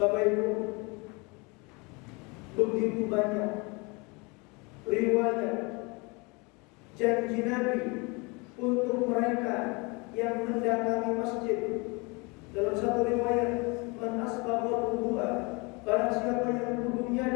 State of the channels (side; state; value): right; quieter; 28.5 dB